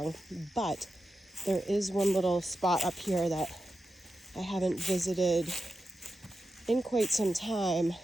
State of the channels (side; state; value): both; normal; correlation 0.90